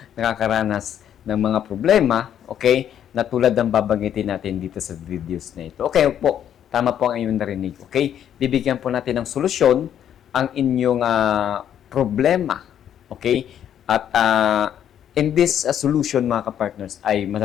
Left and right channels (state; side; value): quieter; right; 9.8 dB